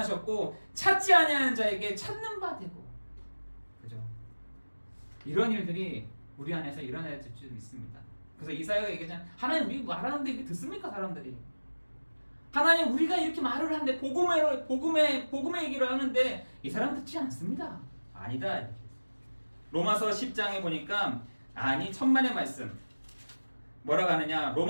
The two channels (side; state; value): both; inverted; correlation -1.00